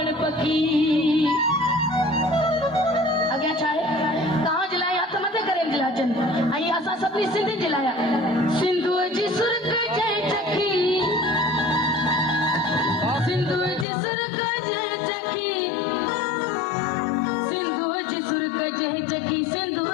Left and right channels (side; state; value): right; drops out; at 13.9 s